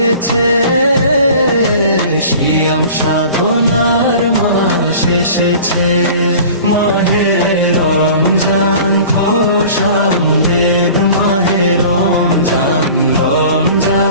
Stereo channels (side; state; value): both; inverted; correlation -0.43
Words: সিয়াম সাধনার মাস এসেছে। মাহে রমজান খোশামদেদ, মাহে রমজান